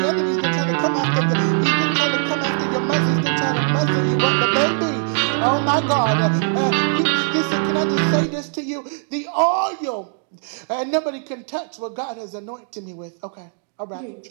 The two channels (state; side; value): silent; left; 65 dB below the other